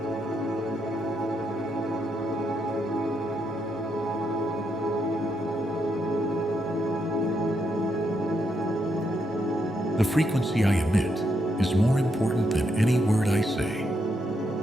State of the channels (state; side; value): normal; both; correlation 0.79